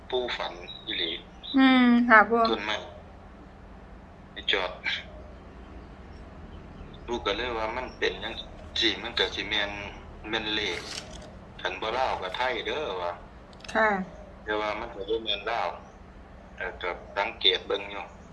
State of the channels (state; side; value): identical; both; correlation 1.00